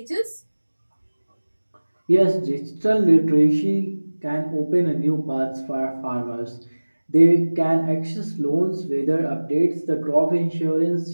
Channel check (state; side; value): inverted; both; correlation -1.00